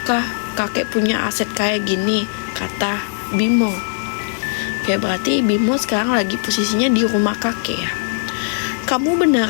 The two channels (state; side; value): silent; right; digital silence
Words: kakek punya aset kayak gini, kata Bimo. Oke, berarti Bimo sekarang lagi posisinya di rumah kakek ya. Kamu